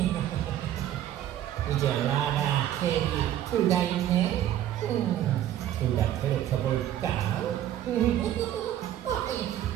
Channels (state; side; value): quieter; left; 11.9 dB